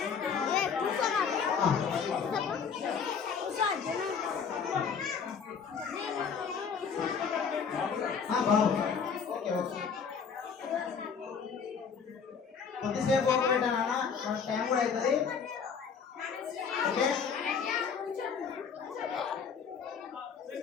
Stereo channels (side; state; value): right; quieter; 6.3 dB